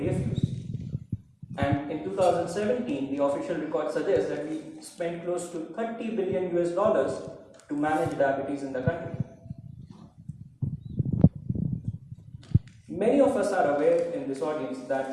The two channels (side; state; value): both; identical; correlation 1.00